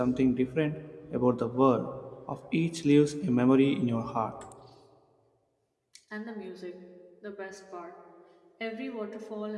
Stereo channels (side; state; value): both; identical; correlation 1.00